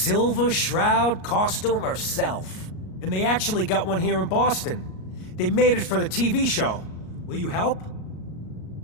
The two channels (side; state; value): right; late; 38 ms